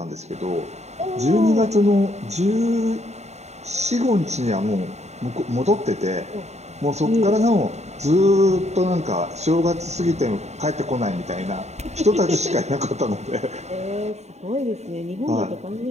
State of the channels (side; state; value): left; late; 0.32 ms